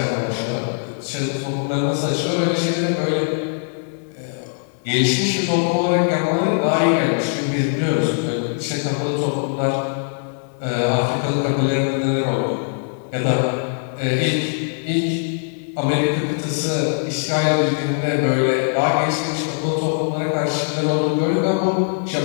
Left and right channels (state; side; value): silent; right; 65 dB below the other